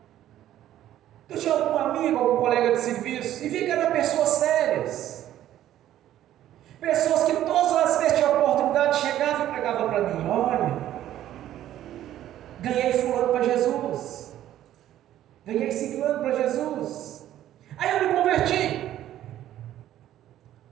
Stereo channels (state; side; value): quieter; left; 12.5 dB